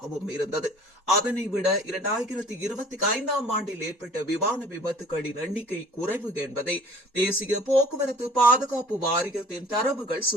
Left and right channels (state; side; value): normal; both; correlation 0.50